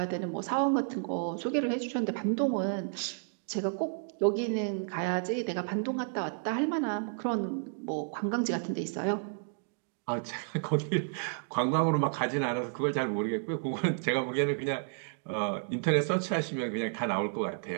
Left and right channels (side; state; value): left; silent; digital silence